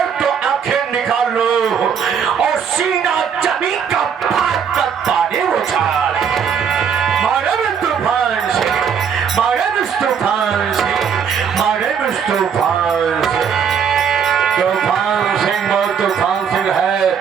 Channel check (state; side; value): quieter; left; 7.2 dB